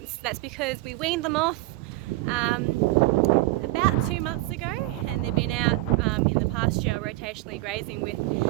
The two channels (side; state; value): left; quieter; 19.2 dB